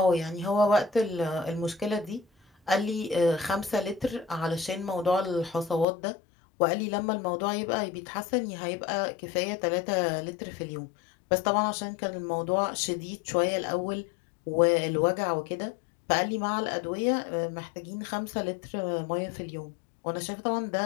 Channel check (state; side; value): drops out; right; at 5.9 s